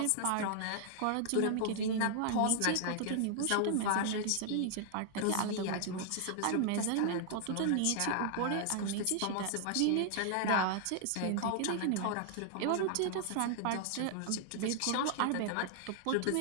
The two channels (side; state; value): both; different; correlation 0.00